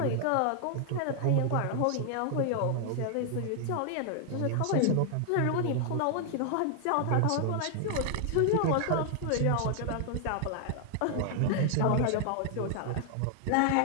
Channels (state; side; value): different; both; correlation -0.01